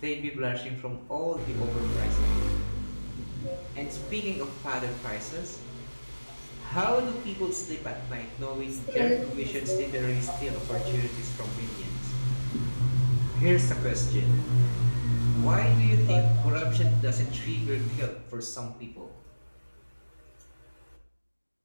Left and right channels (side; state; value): both; inverted; correlation -1.00